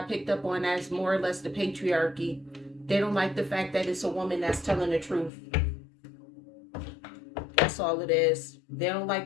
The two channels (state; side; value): drops out; right; at 5.3 s